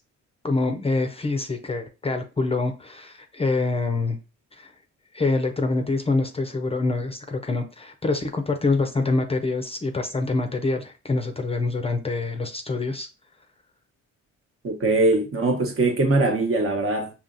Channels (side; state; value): both; normal; correlation 0.59